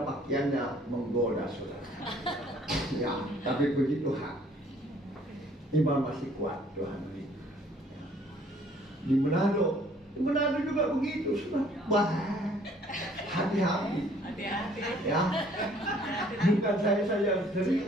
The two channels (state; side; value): normal; both; correlation 0.59